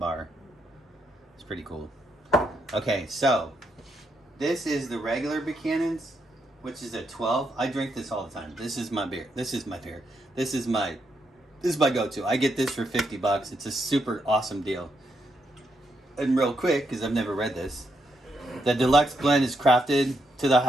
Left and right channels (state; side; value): normal; both; correlation 0.79